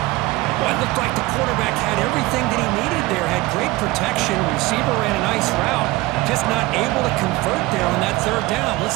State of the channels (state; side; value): quieter; left; 20.2 dB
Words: Well, it looked like the quarterback had everything that he needed there. Had great protection. Receiver ran a nice route. Just not able to convert there on that 3rd down. Let's